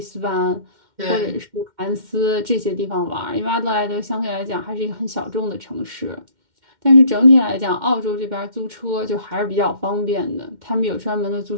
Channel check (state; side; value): late; left; 2.1 ms